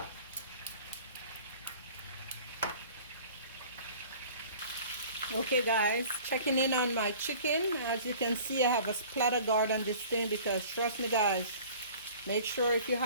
Okay guys, checking in on my chicken. As you can see, I have a splatter guard on this thing because trust me guys, make sure if you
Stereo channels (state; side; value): inverted; both; correlation -0.46